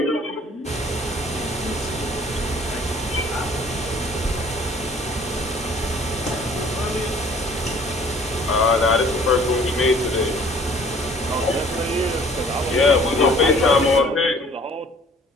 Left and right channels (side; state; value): both; normal; correlation 0.54